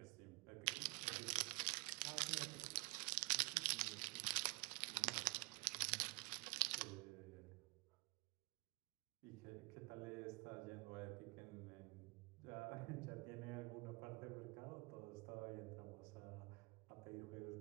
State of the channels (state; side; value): quieter; left; 29.8 dB